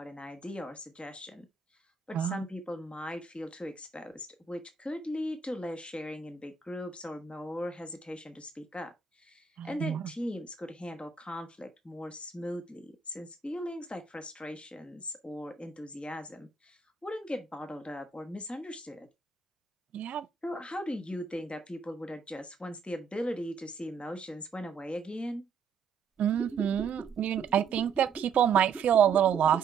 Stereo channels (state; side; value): quieter; left; 5.8 dB